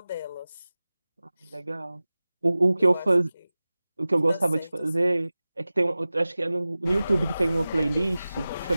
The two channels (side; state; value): both; inverted; correlation -0.97